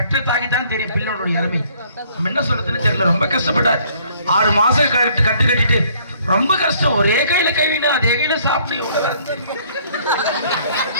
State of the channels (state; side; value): inverted; both; correlation -0.61